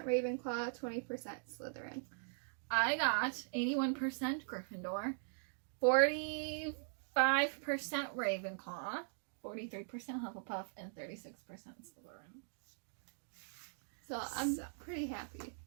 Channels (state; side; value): silent; left; digital silence